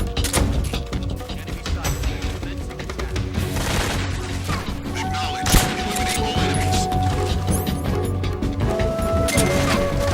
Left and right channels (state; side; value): identical; both; correlation 1.00